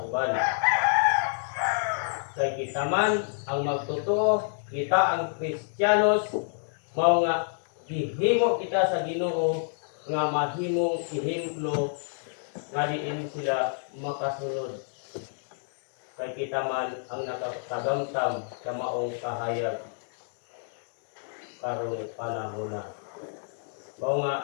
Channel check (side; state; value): right; silent; digital silence